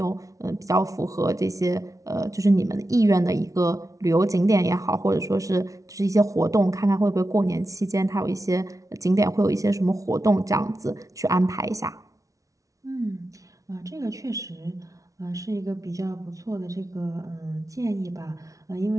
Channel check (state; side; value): late; left; 0.17 ms